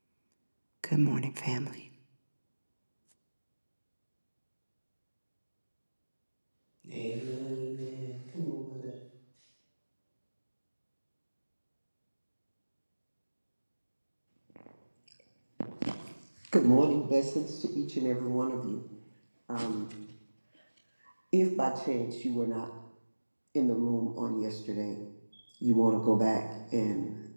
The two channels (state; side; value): inverted; both; correlation -1.00